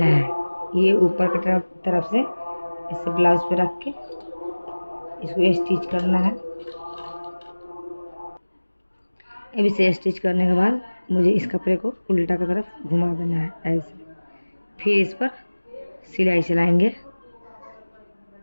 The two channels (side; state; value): both; inverted; correlation -1.00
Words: है। ये ऊपर की तरफ से इसे ब्लाउज पे रख के इसको स्टिच करना है। अब इसे स्टिच करने के बाद मुझे इस कपड़े को उल्टा की तरफ घुमा देना है ऐसे, फिर इस पर सिलाई चलाएंगे।